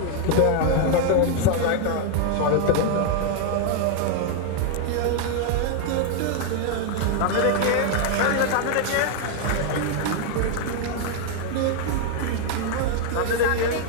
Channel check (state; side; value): different; both; correlation 0.00